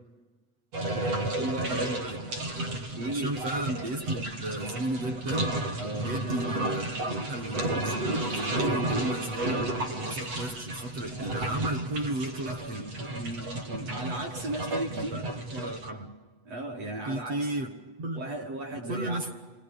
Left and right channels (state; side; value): late; left; 8.1 ms